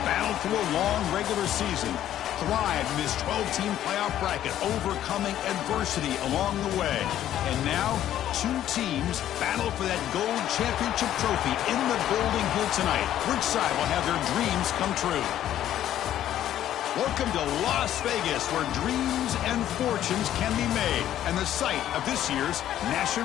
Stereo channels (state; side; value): quieter; right; 11.8 dB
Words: battled through a long regular season, thrived in this 12-team playoff bracket, overcoming adversity along the way. And now, two teams battle for that gold championship trophy in the building here tonight. Which side will have their dreams come true? Welcome to Las Vegas, where dreams and fortunes can be made, and the site of this year's